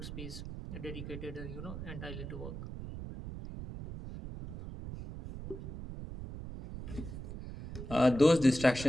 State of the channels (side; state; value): right; noise; rumble, 9 dB below the sound